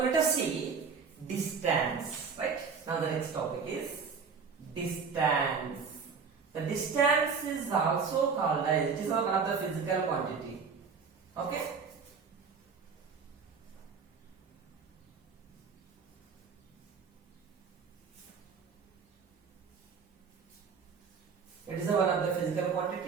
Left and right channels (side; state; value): left; quieter; 5.6 dB